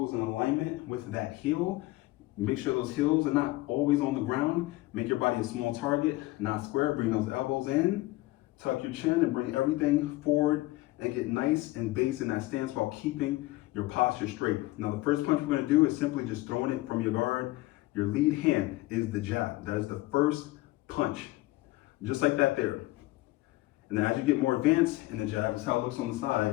in alignment with that heel. Make sure those heels are not always on the ground. Make your body a small target, not square. Bring those elbows in, tuck your chin, and bring everything forward and get nice and base in that stance while keeping your posture straight. Now, the first punch we're gonna do is simply just throwing it from your guard. Your lead hand is the jab. That is the first punch. Just like that there. And then as you get more advanced in the jab, this is how it looks on the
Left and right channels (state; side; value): quieter; right; 19.4 dB